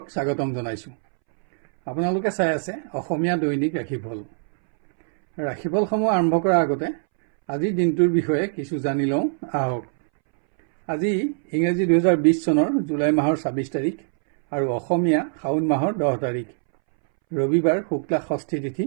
স্বাগতম জনাইছোঁ। আপোনালোকে চাই আছে অসমীয়া দৈনিক ৰাশিফল। ৰাশিফলসমূহ আৰম্ভ কৰাৰ আগতে আজিৰ দিনটোৰ বিষয়ে কিছু জানি লওঁ আহক। আজি ইংৰাজী 2020 চনৰ জুলাই মাহৰ 26 তাৰিখ আৰু অসমীয়া শাওণ মাহৰ 10 তাৰিখ, ৰবিবাৰ, শুক্লা ষষ্ঠী তিথি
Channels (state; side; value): silent; left; 64 dB below the other